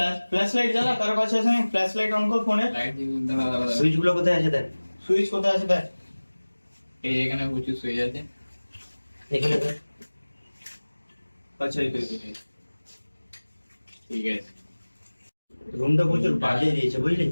ফ্ল্যাশ লাইট জ্বালা কার কাছে আছে? ফ্ল্যাশ লাইট অন কর ফোনে। লাইট দাঁড়া সুইচ গুলো কোথায় আছে দেখ। সুইচ কোথায় আছে দেখ। এই এখানে প্রচুর সুইচ আছে এখানে দেখ। আচ্ছা এই তো ঠিক আছে রুমটা প্রচুর বাজে দিয়েছে বুঝলি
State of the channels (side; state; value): both; inverted; correlation -1.00